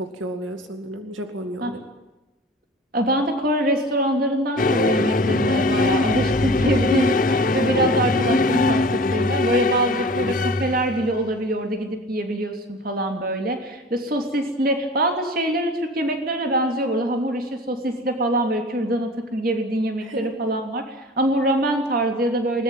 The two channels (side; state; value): both; normal; correlation 0.40